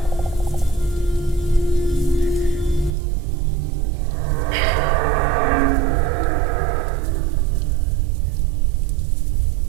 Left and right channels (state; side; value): drops out; left; at 3.0 s